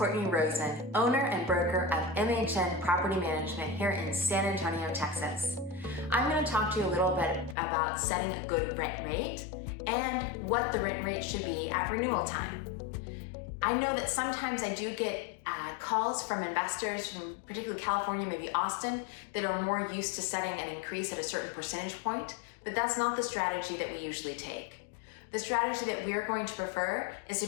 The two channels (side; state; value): right; drops out; at 7.6 s